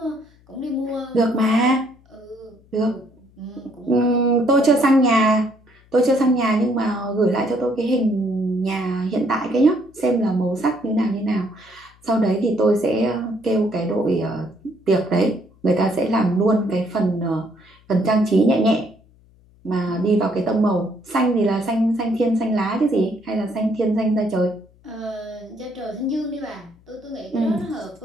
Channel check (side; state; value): left; noise; hum, 29 dB below the sound